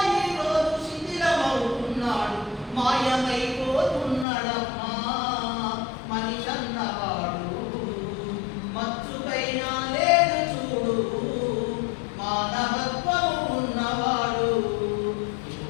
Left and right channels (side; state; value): right; drops out; at 4.2 s